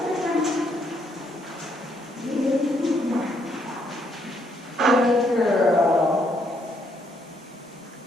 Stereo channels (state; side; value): normal; both; correlation 0.72